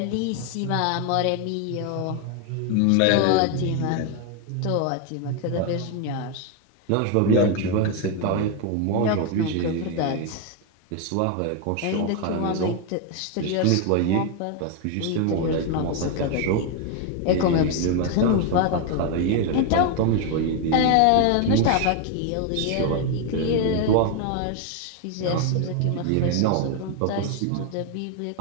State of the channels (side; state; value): both; different; correlation 0.01